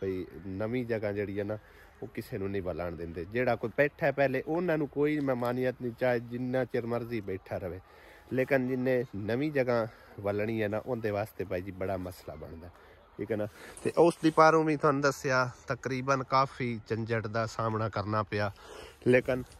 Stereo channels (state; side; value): identical; both; correlation 1.00